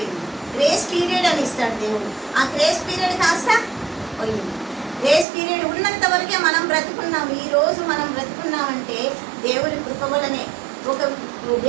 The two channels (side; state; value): left; drops out; at 5.2 s